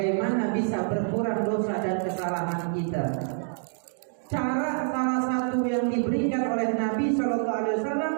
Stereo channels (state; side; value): silent; left; 60 dB below the other